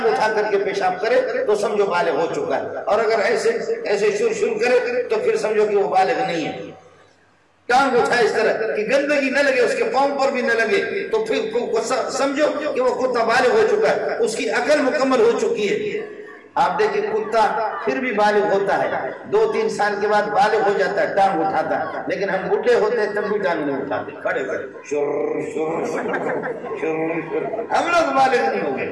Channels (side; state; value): both; identical; correlation 1.00